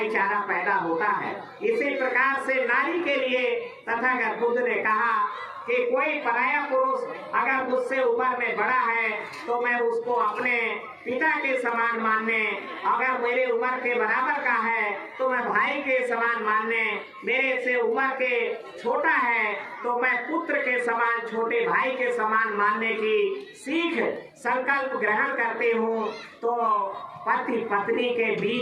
पैदा होता है। इसी प्रकार से नारी के लिए तथागत बुद्ध ने कहा कि कोई पराया पुरुष अगर मुझसे उम्र में बड़ा है तो मैं उसको अपने पिता के समान मानने, अगर मेरे उम्र के बराबर का है तो मैं भाई के समान मानने, मेरे से उम्र के छोटा है तो मैं पुत्र के समान, छोटे भाई के समान मानने की सीख संकल्प ग्रहण करती हूँ तो पति पत्नी के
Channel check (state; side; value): identical; both; correlation 1.00